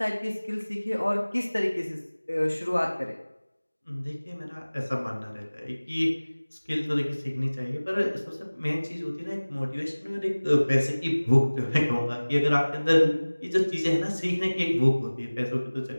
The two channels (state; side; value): inverted; both; correlation -1.00